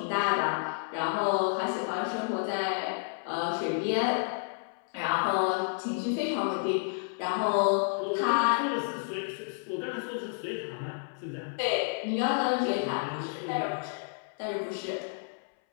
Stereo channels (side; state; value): right; silent; 57 dB below the other